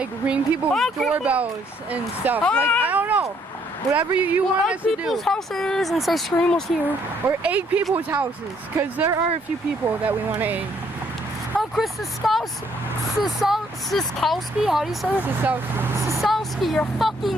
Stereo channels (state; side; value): normal; both; correlation 0.68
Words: ring people's doorbells and stuff, like I don't know, whatever you want us to do. People's houses and say Scream was here. Or egg people's houses, because there are a few people that we want to egg. Oh, Chris Siskowski, how do you say it? Siskowski, you're